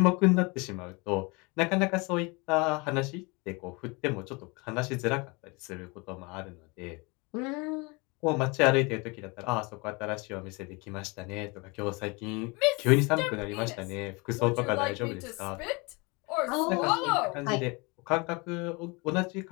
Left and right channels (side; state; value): right; quieter; 27.8 dB